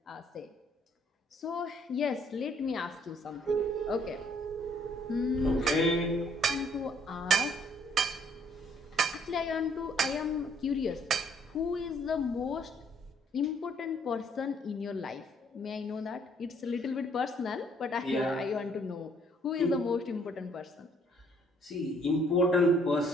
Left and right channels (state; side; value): normal; both; correlation 0.64